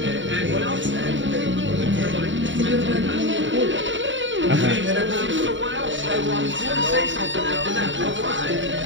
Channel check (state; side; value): late; left; 0.55 ms